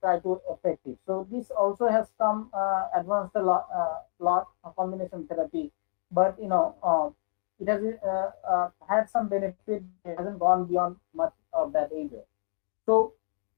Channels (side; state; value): right; silent; 59 dB below the other